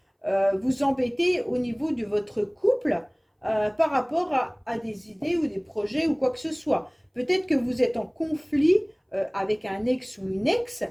vous embêter au niveau de votre couple par rapport à des idées ou des projets ou quoi que ce soit. Peut-être que vous êtes en conflit avec un ex ou une ex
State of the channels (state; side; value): identical; both; correlation 1.00